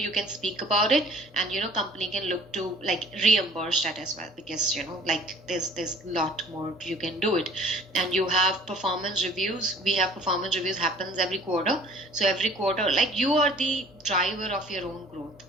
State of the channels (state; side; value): normal; both; correlation 0.51